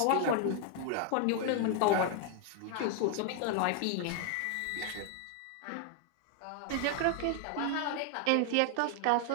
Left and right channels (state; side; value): different; both; correlation 0.00